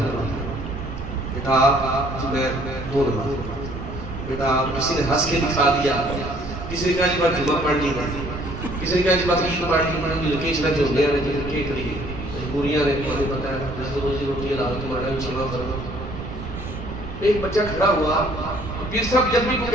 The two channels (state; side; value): noise; right; rumble, 9 dB below the sound